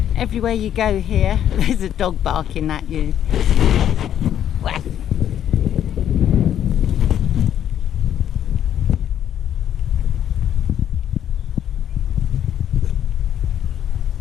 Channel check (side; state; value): right; quieter; 10.3 dB